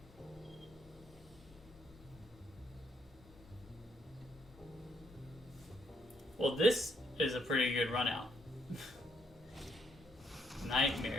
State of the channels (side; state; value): both; normal; correlation 0.73